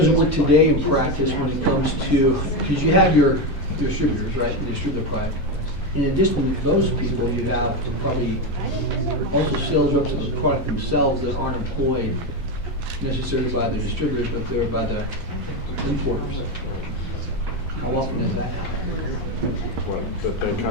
it work today in practice when it comes to, because you have your distributors, right, the distributor product. In addition to those people, you have probably also sales reps of the product themselves that aren't employed necessarily by the distributors, but they're by the importers. How often does that happen? What, that they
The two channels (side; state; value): both; normal; correlation 0.12